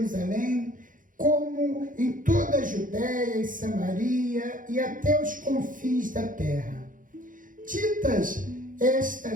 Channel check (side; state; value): left; late; 0.39 ms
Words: como em toda a Judéia e Samaria e até os confins da terra. Ditas